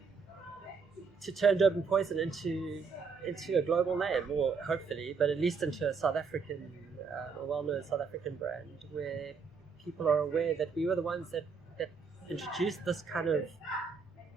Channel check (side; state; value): left; quieter; 5.3 dB